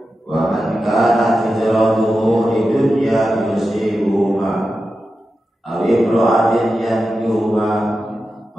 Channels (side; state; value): both; normal; correlation 0.91